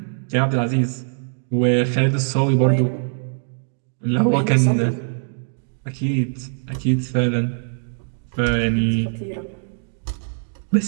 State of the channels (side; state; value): left; silent; digital silence